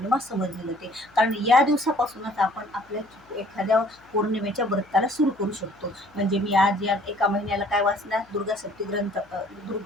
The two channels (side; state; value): left; noise; hum, 30 dB below the sound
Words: समजली जाते. कारण या दिवसापासूनच आपण आपल्या एखाद्या पौर्णिमेच्या व्रताला सुरू करू शकतो. म्हणजे मी आज या एका महिन्याला काय वाचणार,